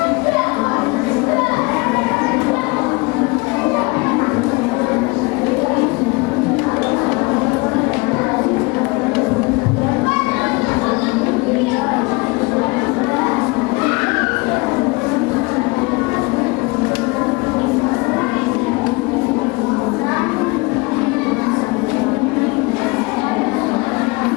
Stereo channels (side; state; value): right; quieter; 25.9 dB